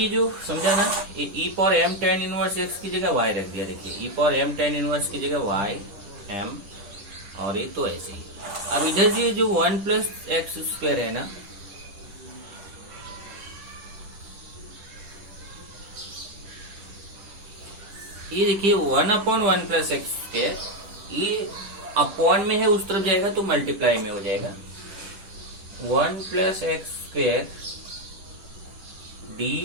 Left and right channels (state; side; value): late; left; 10 ms